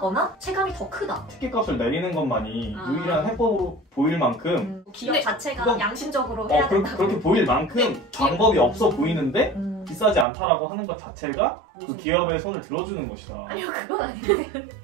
체감이 더 크다. 티켓값을 내리는 것만이 아. 유일한 해법으로 보일 만큼 기업 근데 자체가 그건- 양심적으로 해야 된다. 그렇게 보일 만큼 방법이 없어 보이는데 비싸지 않다라고 하는 것 자체가 그 기업의 손을 들어주는 것이다. 아니요, 그건 아닌데.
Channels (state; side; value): drops out; left; at 10.2 s